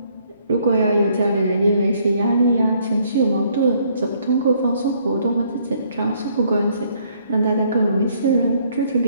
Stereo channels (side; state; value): both; inverted; correlation -0.66